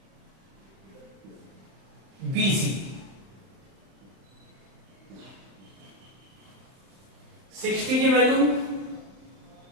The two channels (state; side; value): late; left; 31 ms